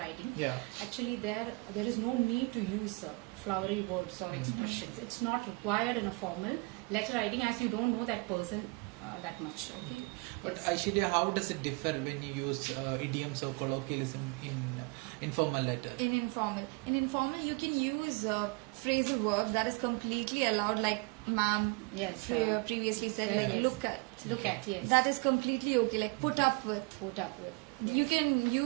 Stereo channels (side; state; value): left; quieter; 28.6 dB